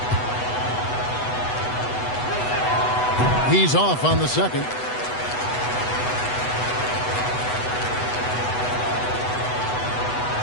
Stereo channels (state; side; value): late; right; 8.1 ms